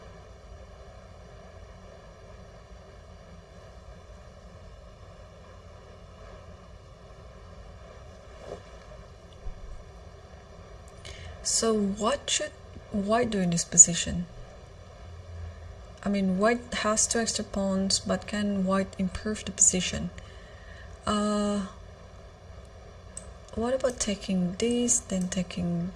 So what should White do in this position? I mean, White has 2 extra pawns, but can White improve the position? What about taking this, then taking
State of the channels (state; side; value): identical; both; correlation 1.00